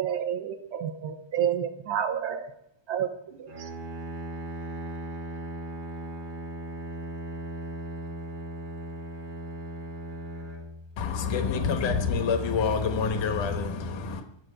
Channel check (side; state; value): right; late; 1.3 ms